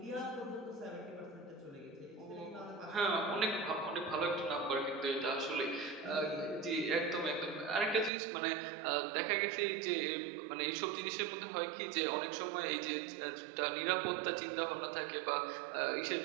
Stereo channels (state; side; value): drops out; left; at 8.1 s